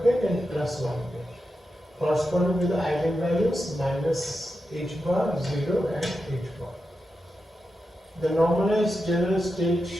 ket and +1 ket, corresponding to the eigenvalues -h bar, 0 and h bar. The normalized general state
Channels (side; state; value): both; normal; correlation 0.89